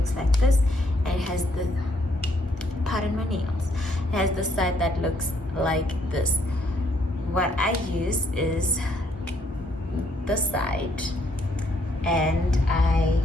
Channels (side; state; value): both; normal; correlation 0.69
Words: like this, and it has the, pardon my nails, it has this side that looks like this. What I use is this side, and I